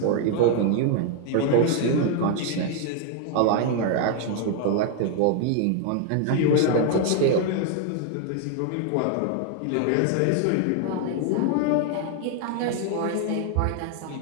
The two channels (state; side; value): different; both; correlation 0.00